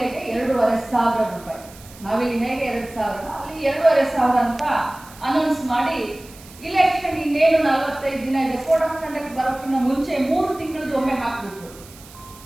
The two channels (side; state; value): right; noise; hiss, 21 dB below the sound